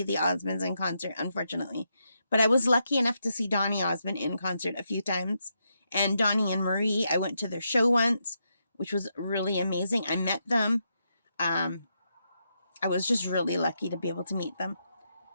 the Osmonds in concert, unfortunately. But I was lucky enough to see Donny Osmond in concert a few times. And Donny and Marie, I went to their show once, which was really amazing. I met them. I was just really lucky to be able to meet them.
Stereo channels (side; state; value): both; inverted; correlation -0.82